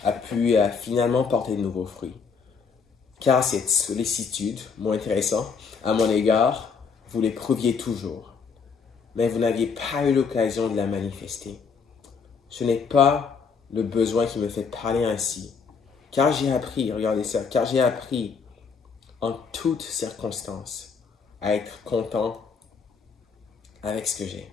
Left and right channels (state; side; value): quieter; right; 5.6 dB